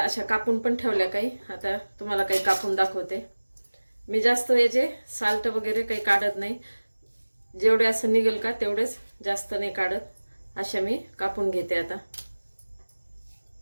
कापून पण ठेवल्या काही। आता तुम्हाला काही कापून दाखवते। मी जास्त याचे साल्ट वगैरे काही काढत नाही, जेवढे असं निघेल का तेवढेच, जास्त नाही काढत। अशा मी कापून घेते। आता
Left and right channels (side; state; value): both; inverted; correlation -1.00